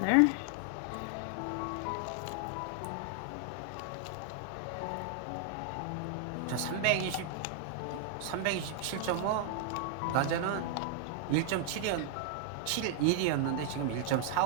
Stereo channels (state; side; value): different; both; correlation 0.00